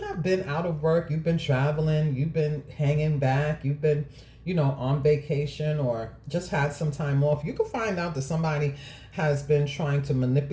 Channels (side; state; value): both; identical; correlation 1.00